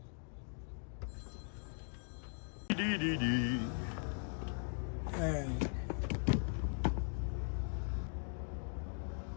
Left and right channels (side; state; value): right; silent; 51 dB below the other